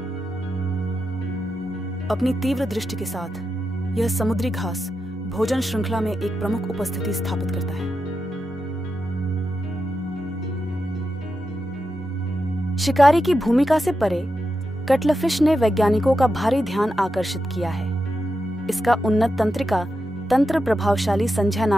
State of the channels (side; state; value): both; normal; correlation 0.88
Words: अपनी तीव्र दृष्टि के साथ यह समुद्री घास भोजन श्रृंखला में एक प्रमुख उपस्थिति स्थापित करता है। शिकारी की भूमिका से परे कटलफिश ने वैज्ञानिकों का भारी ध्यान आकर्षित किया है। इसका उन्नत तंत्रिका तंत्र प्रभावशाली